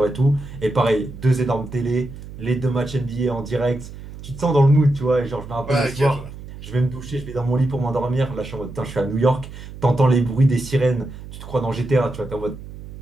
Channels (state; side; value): noise; right; hum, 14 dB below the sound